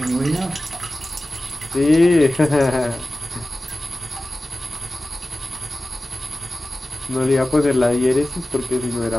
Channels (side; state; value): both; normal; correlation 0.96